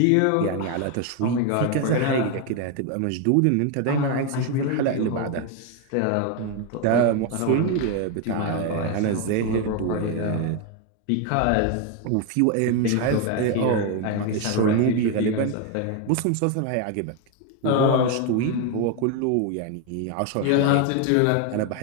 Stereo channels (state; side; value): different; both; correlation 0.01